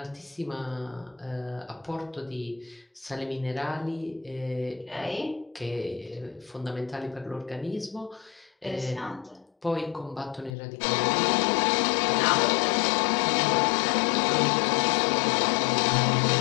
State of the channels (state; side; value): drops out; right; at 10.6 s